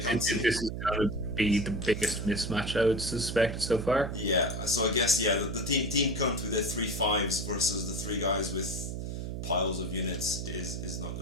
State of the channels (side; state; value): right; noise; hum, 5 dB below the sound